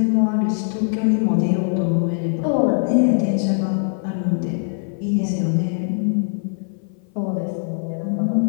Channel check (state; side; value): silent; right; 58 dB below the other